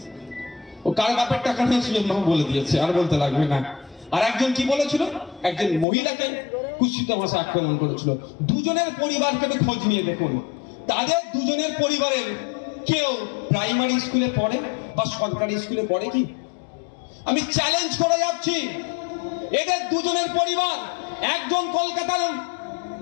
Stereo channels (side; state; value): right; drops out; at 5.9 s